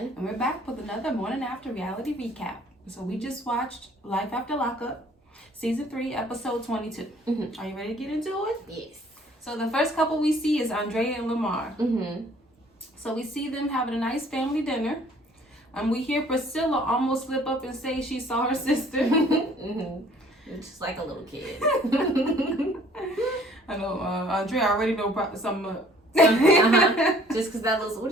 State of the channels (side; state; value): both; normal; correlation 0.56